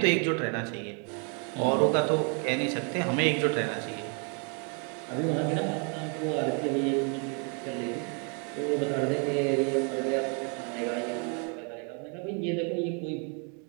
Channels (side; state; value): left; quieter; 37.9 dB